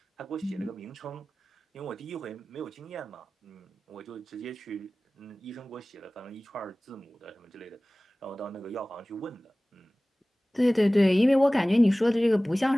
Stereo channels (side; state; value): both; normal; correlation 0.98